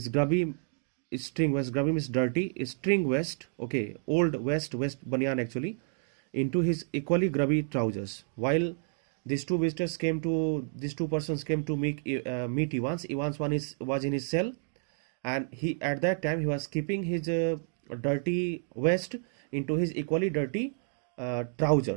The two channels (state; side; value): silent; left; 58 dB below the other